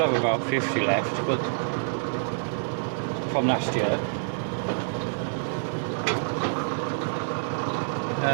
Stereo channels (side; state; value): left; silent; digital silence